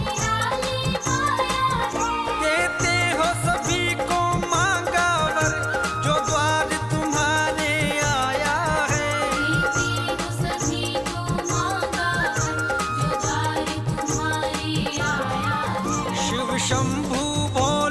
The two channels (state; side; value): identical; both; correlation 1.00